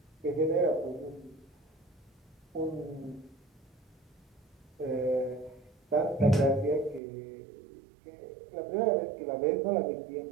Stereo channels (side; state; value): left; drops out; at 7.0 s